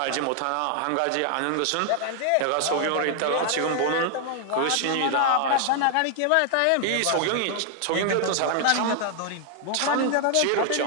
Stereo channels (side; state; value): both; different; correlation 0.00